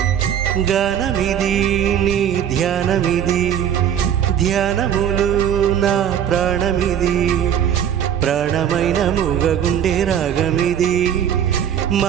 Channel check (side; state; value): left; quieter; 9.3 dB